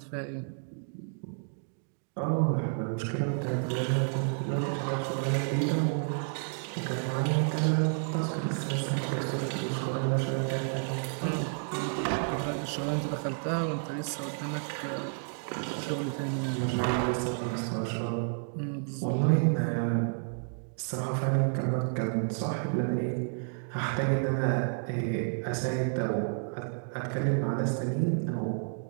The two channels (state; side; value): silent; left; 57 dB below the other